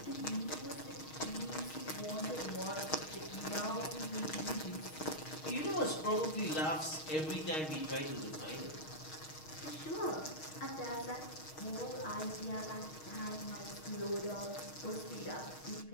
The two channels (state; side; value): late; right; 6.4 ms